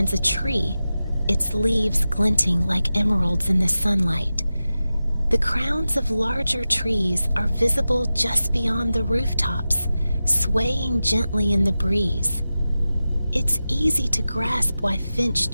a tree, its leaves glinting like emeralds in the sunlight. The crowns of larger trees are visible just beyond the rooftops, swaying gently in the breeze. It's easy to grasp why Finch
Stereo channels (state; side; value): inverted; both; correlation -0.94